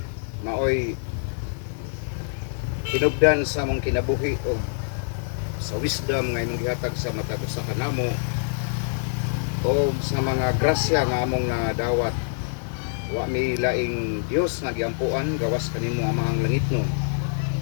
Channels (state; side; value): silent; right; digital silence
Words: maoy hinubdan sa mong kinabuhi o sa wisdom nga imong gihatag sa matag usa ka namo o sa mga grasya nga among nadawat. Wa mi laing Dios nga giampuan gawas kanimo amahang langitnon.